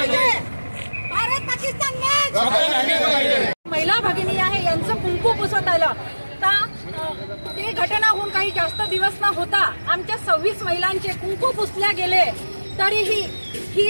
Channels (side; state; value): both; inverted; correlation -1.00